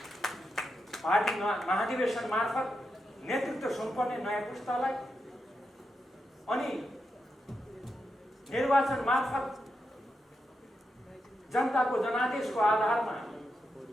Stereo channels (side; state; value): both; normal; correlation 0.86